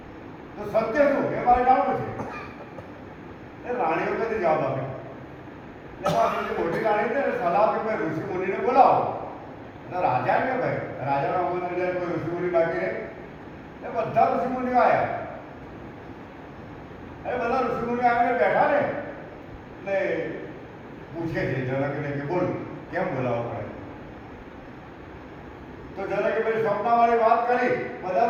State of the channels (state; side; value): identical; both; correlation 1.00